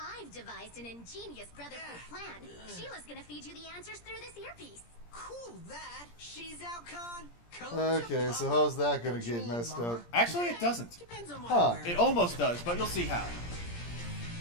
devised an ingenious brotherhood plan. Sheila's gonna feed you the answers through this earpiece. cool that. Shezow-con. Okay, so how's that gonna get messed up? Actually, it doesn't. Depends on what Huh. I'm wearing. It almost does, but you'll see how.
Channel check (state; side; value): late; right; 17 ms